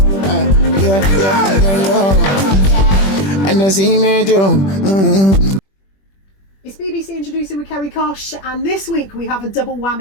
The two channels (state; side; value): late; right; 21 ms